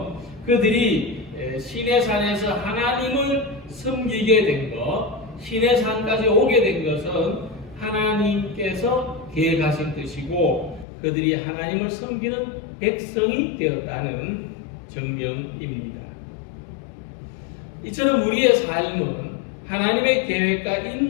그들이 시내산에서 하나님을 섬기게 된 것, 시내산까지 오게 된 것은 하나님께서 계획하신 뜻이고 그들이 하나님을 섬기는 백성이 되었다는 증명입니다. 이처럼 우리의 삶은 하나님의 계획과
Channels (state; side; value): drops out; right; at 10.9 s